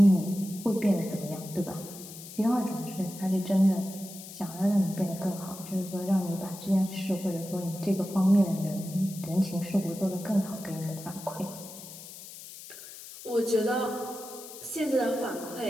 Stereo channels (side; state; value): left; noise; hiss, 14 dB below the sound